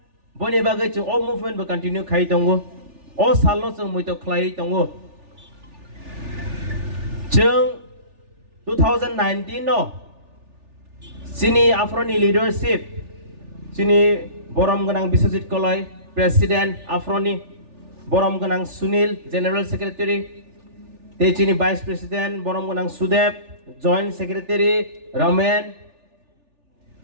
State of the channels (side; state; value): left; late; 3.4 ms